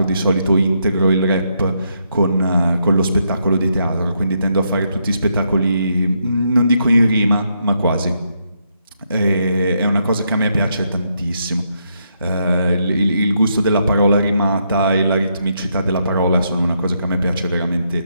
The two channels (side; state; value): both; inverted; correlation -0.78